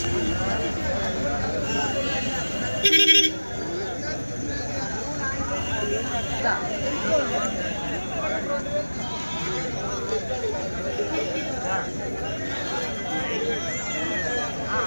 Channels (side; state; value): both; inverted; correlation -1.00